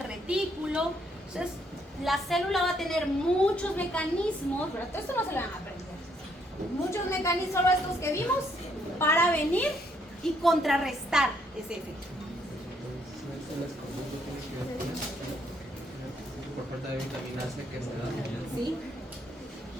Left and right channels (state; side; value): normal; both; correlation 0.71